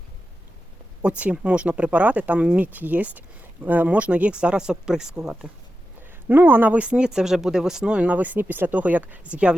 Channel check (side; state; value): both; normal; correlation 0.91